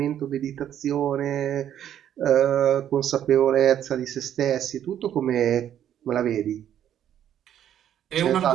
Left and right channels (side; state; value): left; quieter; 10.5 dB